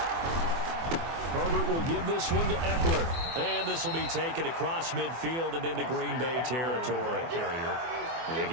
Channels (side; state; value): left; late; 24 ms